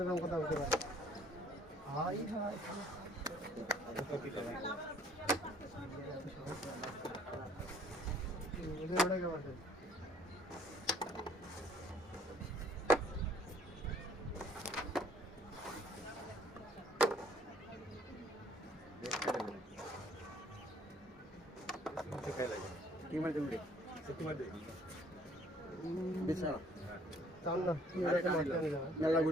এরকম কথা বলতে পারে হাই হাই ওটা কেমন আছে কি মার দেবি বিছানা টান না তুই এটা মারতে নিয়ে যাবে মেলা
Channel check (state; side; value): normal; both; correlation 0.59